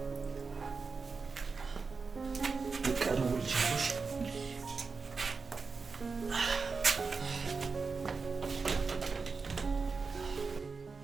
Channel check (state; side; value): quieter; left; 4.7 dB